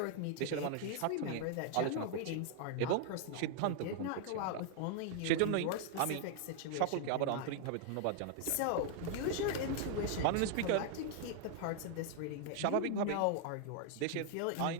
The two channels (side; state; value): both; different; correlation 0.00